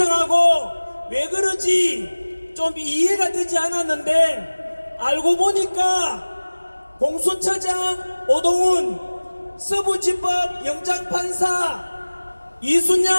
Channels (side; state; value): both; inverted; correlation -1.00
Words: 왜 그러지 좀 이해가 되지 않았는데, 알고 보니까 공수처장 오동훈, 서부지법 영장판사